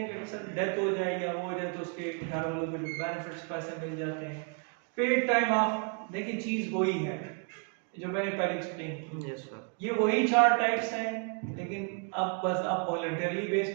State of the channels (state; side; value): quieter; left; 38.4 dB